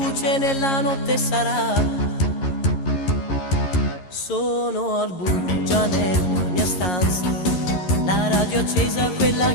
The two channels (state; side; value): late; right; 11 ms